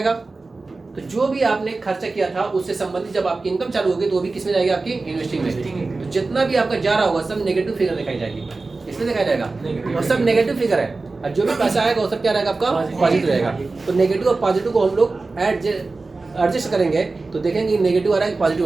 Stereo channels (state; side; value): quieter; left; 3.6 dB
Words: तो जो भी आपने खर्चा किया था उससे संबंधित जब आपकी इनकम चालू होगी तो वो भी किसमें जाएगी, आपकी इन्वेस्टिंग में। तो जितना भी आपका जा रहा होगा सब नेगेटिव फिगर दिखाई जाएगी, इसमें दिखाया जाएगा, और सब नेगेटिव फिगर है। और जो भी पैसा आएगा वो सब क्या रहेगा, आपका पॉजिटिव रहेगा। तो नेगेटिव और पॉजिटिव को हम लोग एडजस्ट करेंगे तो देखेंगे नेगेटिव आ रहा है